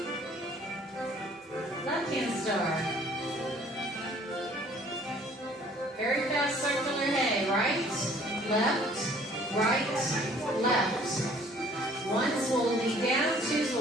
Left hand star. Very fast circular hay. Right, left, right, left. Ones will lead down, twos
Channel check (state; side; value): normal; both; correlation 0.56